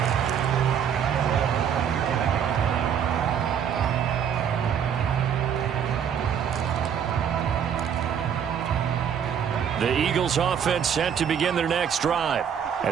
The Eagles offense set to begin their next drive.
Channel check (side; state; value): left; quieter; 8.2 dB